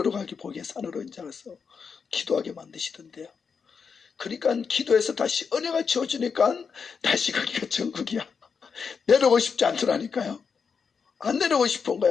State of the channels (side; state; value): right; quieter; 5.9 dB